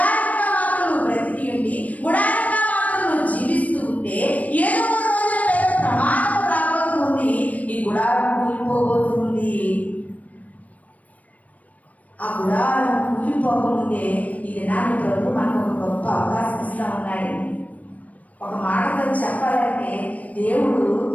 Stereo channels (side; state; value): right; late; 0.071 ms